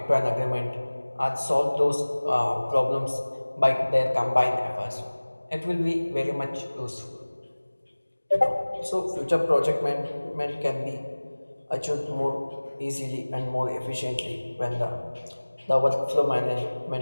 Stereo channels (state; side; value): inverted; both; correlation -1.00